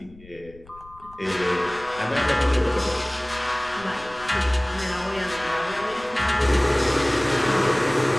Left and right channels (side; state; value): left; noise; rumble, 23 dB below the sound